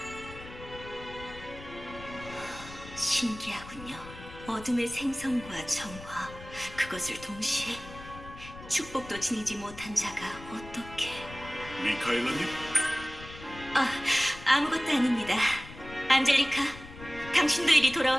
신기하군요. 어둠의 생성과 정화, 그것을 동시에 축복도 지니지 못한 자가 어떻게... 미카엘라님? 아무것도 아닙니다. 안젤리카, 당신도 이리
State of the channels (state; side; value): noise; left; rumble, 15 dB below the sound